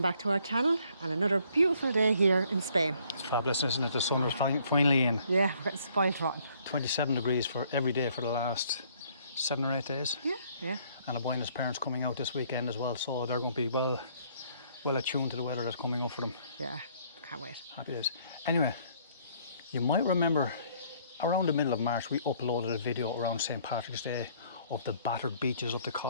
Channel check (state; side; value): inverted; both; correlation -0.63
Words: back to our channel and another beautiful day here in Spain. It's fabulous, isn't it? The sun is finally in. Yeah, we're getting spoiled rotten. 27 degrees for every day for the last 7 or 8 days. Yeah. And I'm buying his parents coming out this weekend as well, so they're going to be well attuned to the weather that's coming up for them. Yeah, can't wait. Happy days. Anyway, you might remember around the middle of March we uploaded a video around St. Patrick's Day of the battered beaches of the